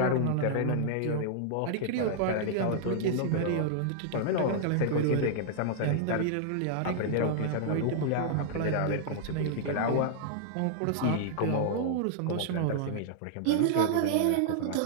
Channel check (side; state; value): both; different; correlation -0.01